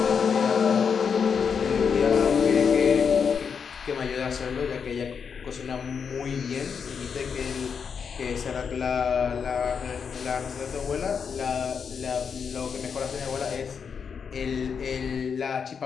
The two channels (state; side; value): quieter; right; 6.4 dB